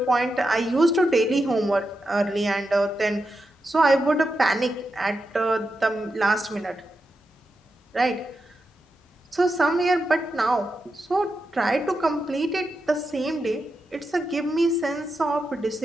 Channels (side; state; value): both; normal; correlation 0.88